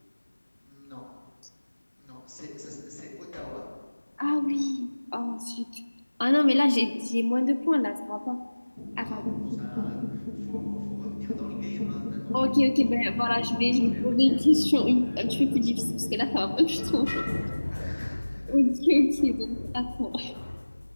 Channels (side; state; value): both; inverted; correlation -1.00